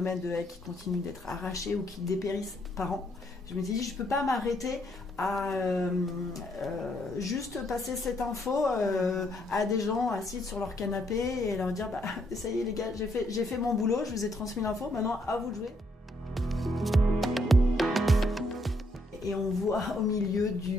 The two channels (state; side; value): normal; both; correlation 0.73